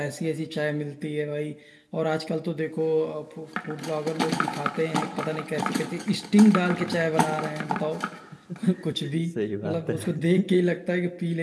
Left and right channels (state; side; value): identical; both; correlation 1.00